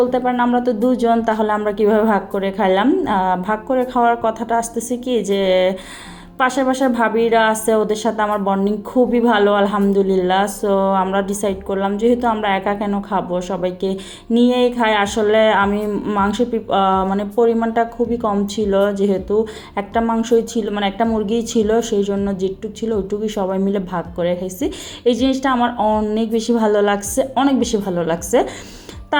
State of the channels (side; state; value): both; identical; correlation 1.00